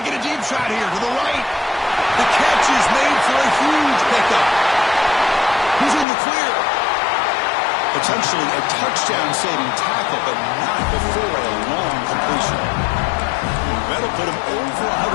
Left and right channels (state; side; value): drops out; right; at 6.1 s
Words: a deep shot here to the right. The catch is made for a huge pickup. He's in the clear. Potentially a touchdown-saving tackle, but not before a long completion. That'll put him over